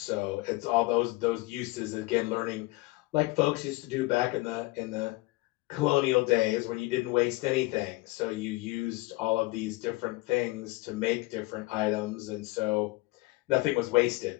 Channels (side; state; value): right; quieter; 22.2 dB